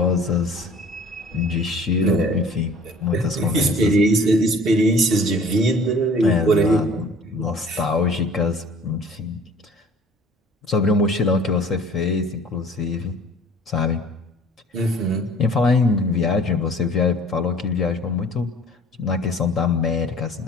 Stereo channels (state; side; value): normal; both; correlation 0.49